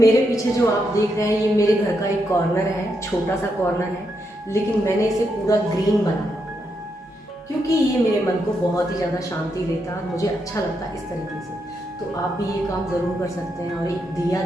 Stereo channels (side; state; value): both; normal; correlation 0.81